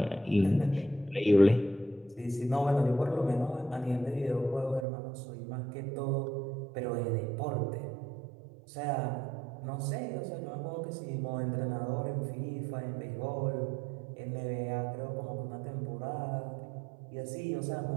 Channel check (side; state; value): left; drops out; at 4.9 s